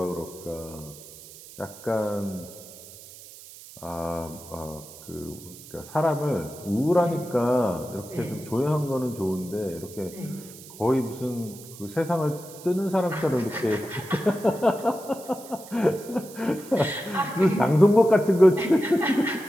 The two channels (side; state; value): right; noise; hiss, 17 dB below the sound